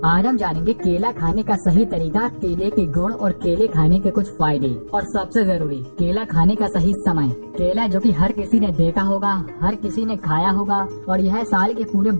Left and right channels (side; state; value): both; inverted; correlation -1.00